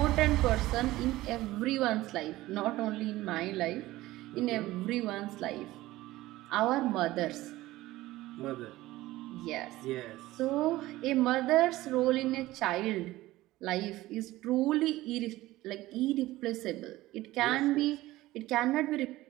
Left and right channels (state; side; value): quieter; left; 17.3 dB